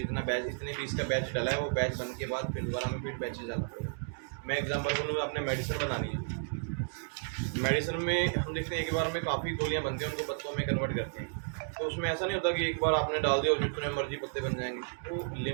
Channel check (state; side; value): silent; left; digital silence